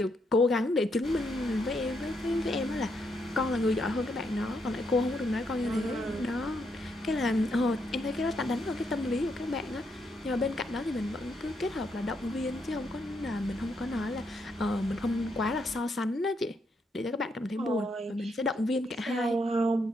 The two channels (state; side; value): normal; both; correlation 0.77